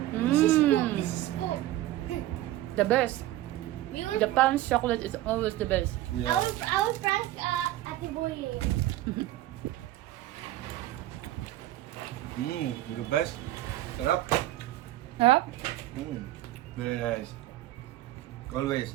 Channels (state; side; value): quieter; left; 15.2 dB